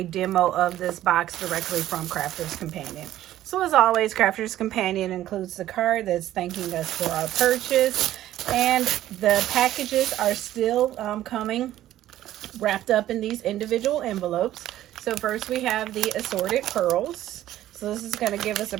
demo of this box directly from Crafter's Companion. So as always, Crafter's Companion includes the card that's thanking us for our purchase, and the packages are still coming wrapped up in these individual envelopes. So first we have the assorted pearls. So this is going to give us a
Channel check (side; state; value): left; quieter; 13.4 dB